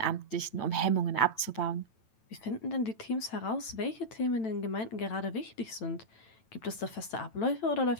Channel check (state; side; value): late; right; 9.0 ms